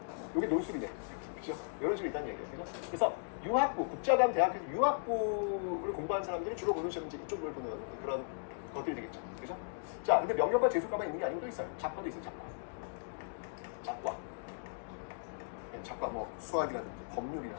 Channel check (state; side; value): silent; right; digital silence